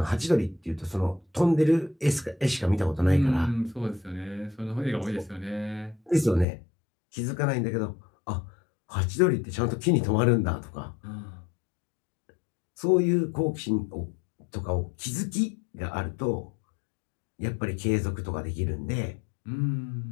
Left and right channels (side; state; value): right; drops out; at 6.5 s